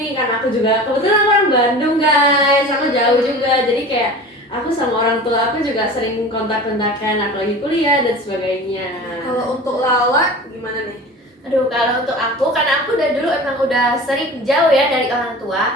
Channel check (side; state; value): both; normal; correlation 0.37